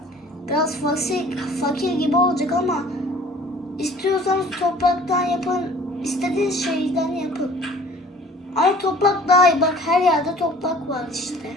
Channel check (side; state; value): both; normal; correlation 0.50